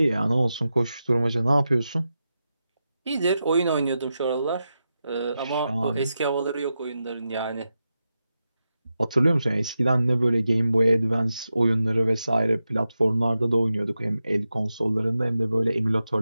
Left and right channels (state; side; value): inverted; both; correlation -0.90